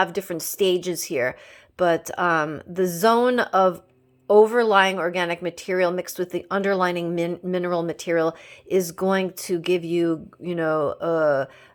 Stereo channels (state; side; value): identical; both; correlation 1.00